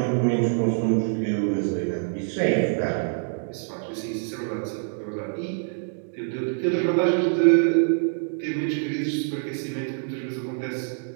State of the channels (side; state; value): left; silent; digital silence